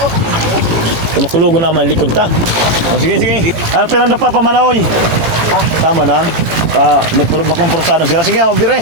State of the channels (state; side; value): late; left; 18 ms